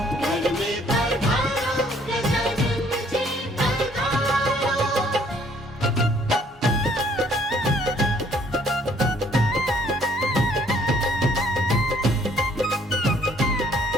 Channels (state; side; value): normal; both; correlation 0.62